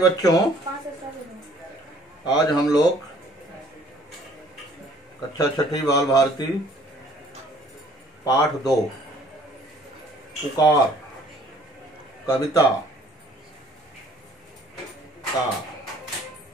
आज हम लोग कक्षा छठी बाल भारती पाठ 2 पुकार कविता का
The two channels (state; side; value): normal; both; correlation 0.57